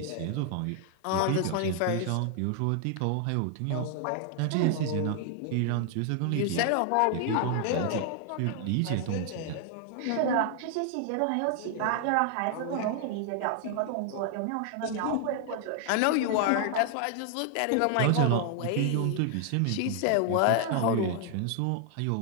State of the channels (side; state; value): both; different; correlation 0.00